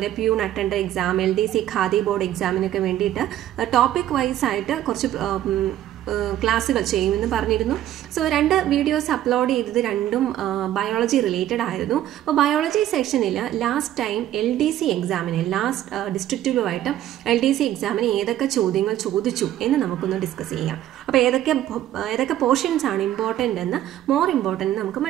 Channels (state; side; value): quieter; left; 12.6 dB